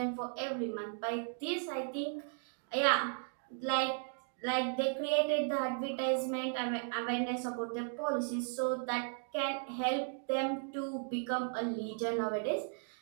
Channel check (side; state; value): left; silent; 54 dB below the other